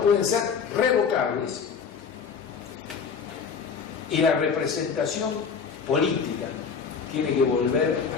pueden ser revocables y la representación política tiene que volver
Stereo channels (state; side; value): quieter; right; 6.1 dB